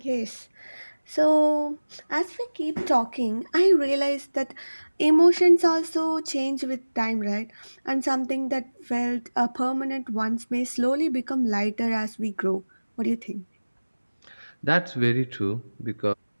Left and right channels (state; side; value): inverted; both; correlation -1.00